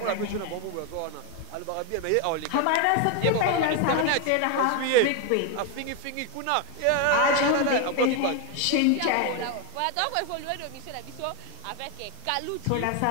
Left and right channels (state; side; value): different; both; correlation 0.01